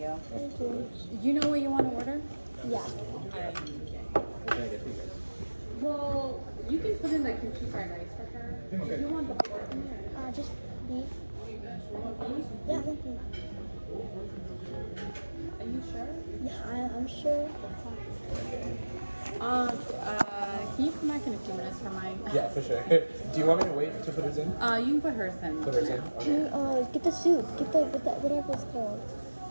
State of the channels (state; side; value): inverted; both; correlation -1.00